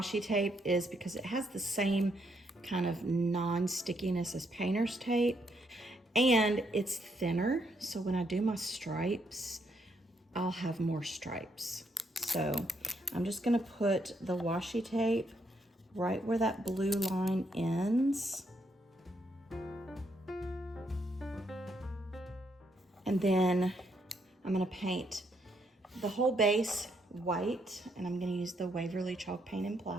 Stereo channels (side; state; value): both; normal; correlation 0.75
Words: tape is because it has the same kind of non-stickiness as painter's tape, and it's thinner, so when I do my stripes, I'll have more stripes. So I'm just gonna put the washi tape right where that blue line ends. And then I'm gonna paint the whole base white, and I'm gonna use the Waverly chalk paint and